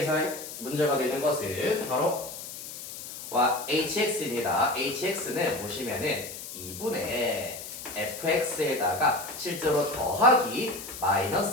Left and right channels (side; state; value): left; noise; hiss, 10 dB below the sound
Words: 문제가 되는 것은 바로 hx입니다. hx는 보시면은 2분의 fx에다가 실제로 더하기